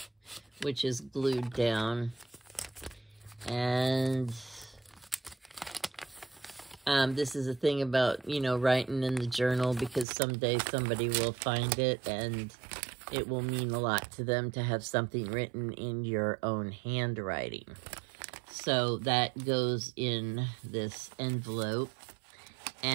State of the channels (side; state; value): left; drops out; at 10.1 s